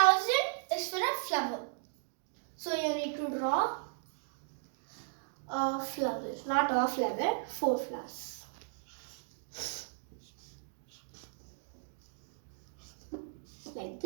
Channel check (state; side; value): silent; left; digital silence